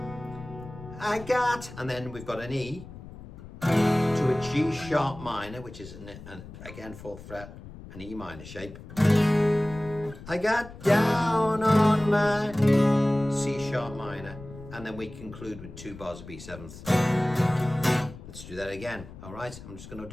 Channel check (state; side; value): noise; left; rumble, 15 dB below the sound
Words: I got, and then we've got an E to a G sharp minor, which is again 4th fret, an E minor shape. I got down on my C sharp minor, and then we conclude with 2 bars of B7th. Let's do that again. All right, I'm just going to